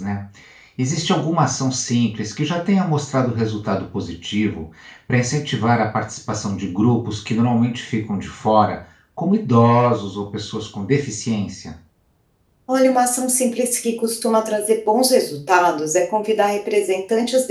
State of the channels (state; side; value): identical; both; correlation 1.00